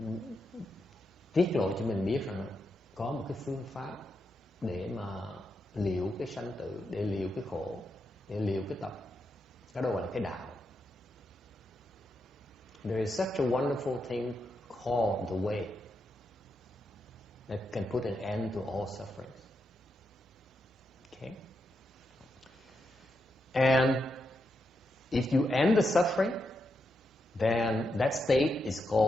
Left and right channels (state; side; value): normal; both; correlation 0.84